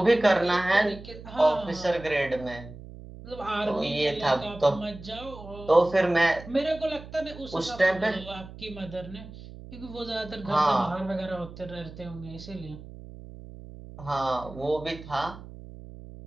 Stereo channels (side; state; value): right; noise; hum, 15 dB below the sound